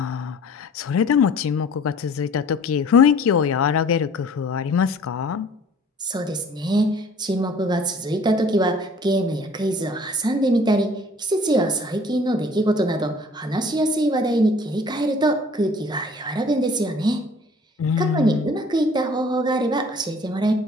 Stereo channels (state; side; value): normal; both; correlation 0.51